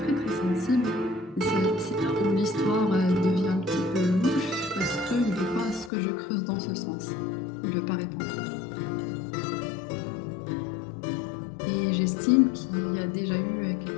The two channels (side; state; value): right; drops out; at 5.9 s